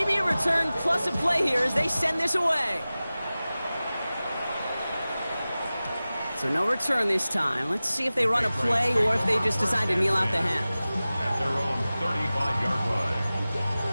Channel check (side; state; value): both; inverted; correlation -0.97